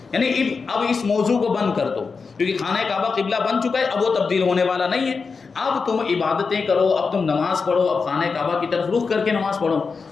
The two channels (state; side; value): quieter; right; 4.9 dB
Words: یعنی اب اس موضوع کو بند کر دو، کیونکہ خانہ کعبہ قبلہ بن چکا ہے، اب وہ تبدیل ہونے والا نہیں ہے۔ اب تم عبادتیں کرو، اب تم نماز پڑھو، اب خانہ کعبہ کی طرف رخ کر کے نماز پڑھو،